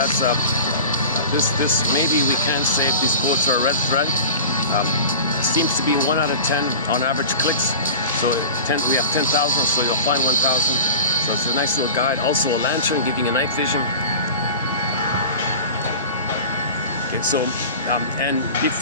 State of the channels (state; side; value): inverted; both; correlation -0.35